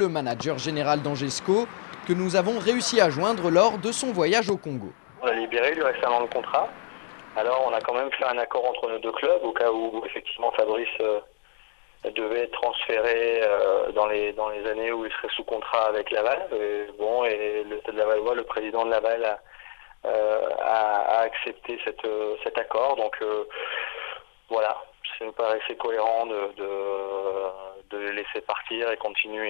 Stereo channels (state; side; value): silent; right; digital silence